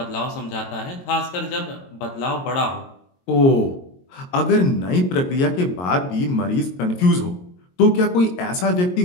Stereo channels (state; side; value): late; right; 22 ms